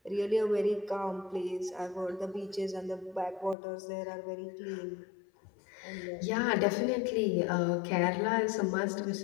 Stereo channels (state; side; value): drops out; right; at 3.6 s